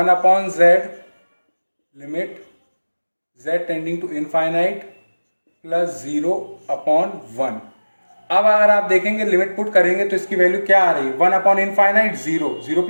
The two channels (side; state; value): both; inverted; correlation -1.00